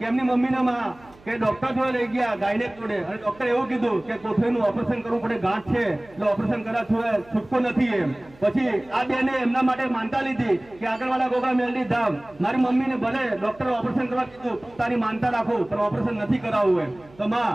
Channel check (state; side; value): noise; right; hum, 25 dB below the sound